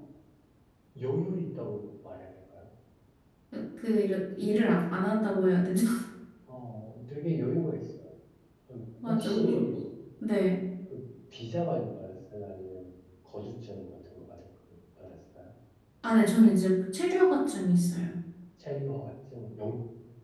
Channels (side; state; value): both; identical; correlation 1.00